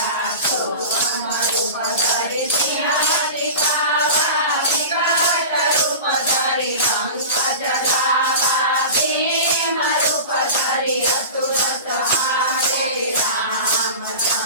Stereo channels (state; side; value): inverted; both; correlation -0.32